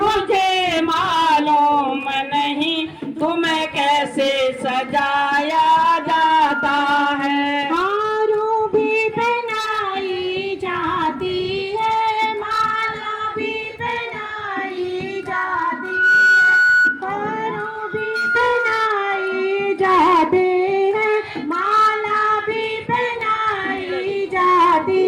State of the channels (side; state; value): both; identical; correlation 1.00